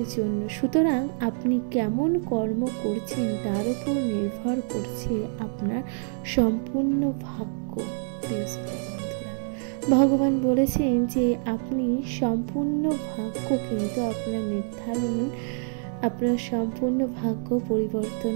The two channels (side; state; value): left; silent; digital silence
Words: জন্য, সুতরাং আপনি কেমন কর্ম করছেন তার উপর নির্ভর করছে আপনার সম্পূর্ণ ভাগ্য। প্রিয় শ্রোতা বন্ধুরা, ভগবান বলেছেন যে আপনি সম্পূর্ণ ভাগ্য কিন্তু আপনার সম্পূর্ণ ভাগ্য পরিবর্তন